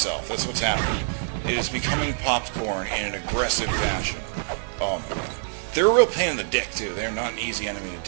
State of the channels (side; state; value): left; silent; 58 dB below the other